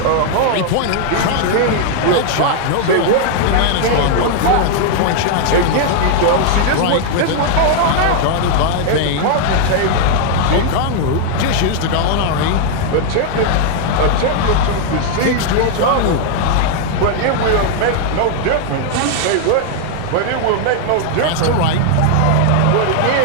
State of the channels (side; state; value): both; different; correlation 0.00